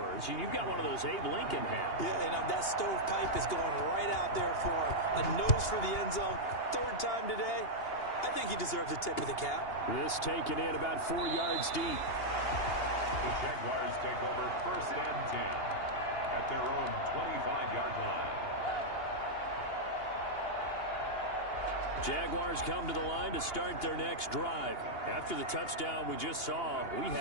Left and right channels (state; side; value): late; right; 2.8 ms